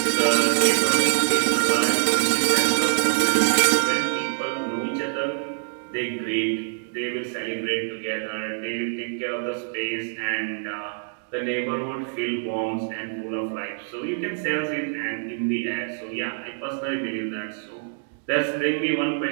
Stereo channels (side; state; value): left; silent; digital silence